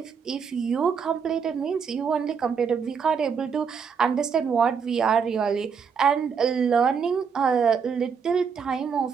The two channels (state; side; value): quieter; left; 6.3 dB